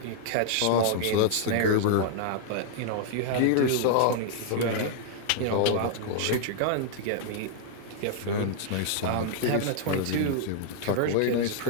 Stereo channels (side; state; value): both; different; correlation -0.01